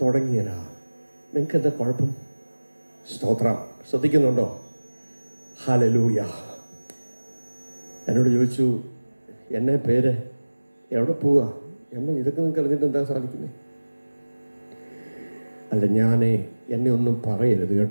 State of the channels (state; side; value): inverted; both; correlation -1.00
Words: തുടങ്ങിയനാ, നിങ്ങൾക്ക് എന്താ കുഴപ്പം? സ്തോത്രം. ശ്രദ്ധിക്കുന്നുണ്ടോ? ഹല്ലേലൂയ. എന്നോട് ചോദിച്ചു, എന്നെ പേര് എവിടെ പോവുക? ഞാൻ ഇതൊക്കെ നിങ്ങൾക്ക് അറിഞ്ഞിട്ട് എന്താ സാധിക്കുന്നത്? അല്ല, എന്നെ ഒന്നും പറയരുത്